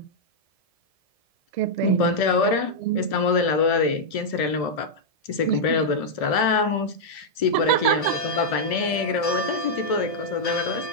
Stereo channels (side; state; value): right; late; 1.7 ms